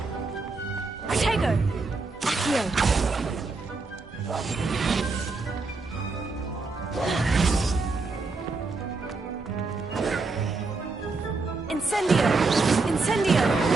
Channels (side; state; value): left; quieter; 3.8 dB